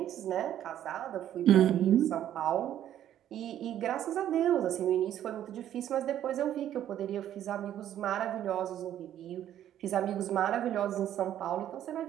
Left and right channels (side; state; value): left; quieter; 11.3 dB